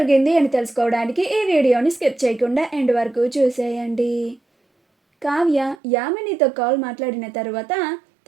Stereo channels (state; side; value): drops out; left; at 5.8 s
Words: అని తెలుసుకోవడానికి ఈ వీడియోని స్కిప్ చేయకుండా ఎండ్ వరకు చూసేయండి. కావ్య యామినితో కాల్ మాట్లాడిన తర్వాత